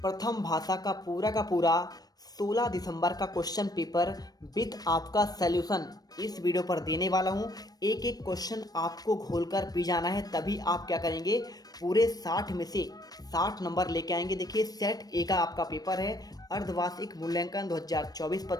भाषा का पूरा 16 दिसंबर का क्वेश्चन पेपर विथ आपका सॉल्यूशन इस वीडियो पर देने वाला हूँ। एक एक क्वेश्चन आपको घोलकर पी जाना है, तभी आप क्या करेंगे, पूरे 60 में से 60 नंबर लेके आएंगे। देखिए, सेट ए का आपका पेपर है, अर्धवार्षिक मूल्यांकन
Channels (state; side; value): late; right; 0.19 ms